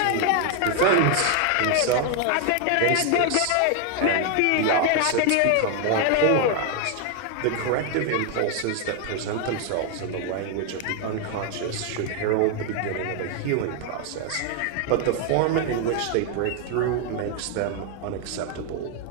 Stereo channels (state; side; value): different; both; correlation 0.00